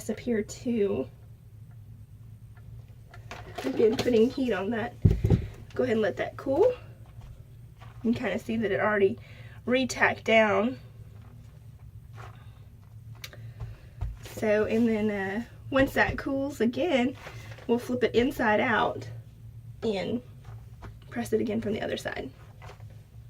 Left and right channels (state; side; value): identical; both; correlation 1.00